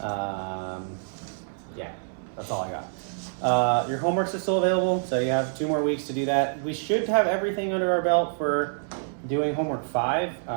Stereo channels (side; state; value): left; silent; 60 dB below the other